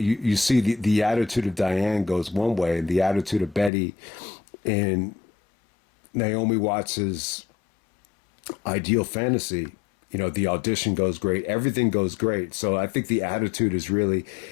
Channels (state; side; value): drops out; right; at 3.7 s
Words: see the attitude of Diane goes one way, and the attitude of Betty in Naomi Watts's ideal fantasy, the audition goes great, everything goes great. So I think the attitude is really,